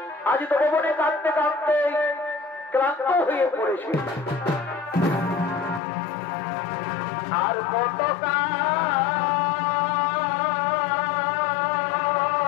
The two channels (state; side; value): drops out; right; at 5.8 s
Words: আজ তো ভবনে কাঁদতে কাঁদতে ক্লান্ত হয়ে পড়েছে আর কত